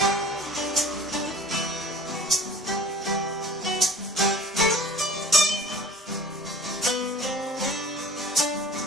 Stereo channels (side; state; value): both; normal; correlation 0.44